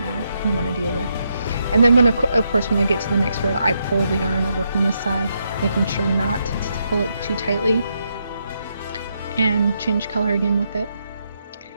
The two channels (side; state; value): both; inverted; correlation -0.80